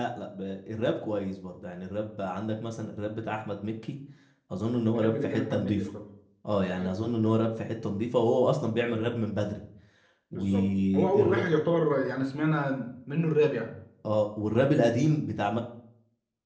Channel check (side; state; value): both; identical; correlation 1.00